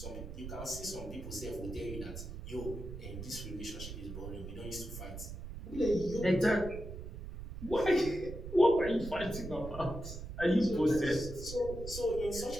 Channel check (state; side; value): noise; right; rumble, 9 dB below the sound